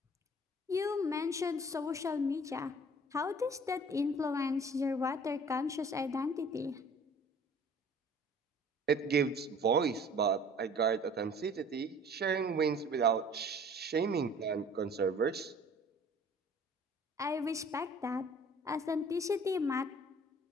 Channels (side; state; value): both; normal; correlation 0.50